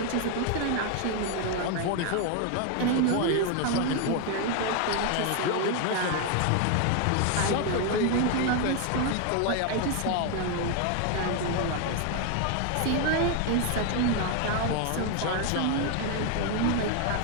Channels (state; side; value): different; both; correlation 0.01